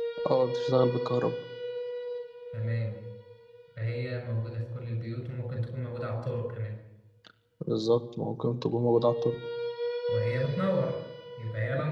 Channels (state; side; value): identical; both; correlation 1.00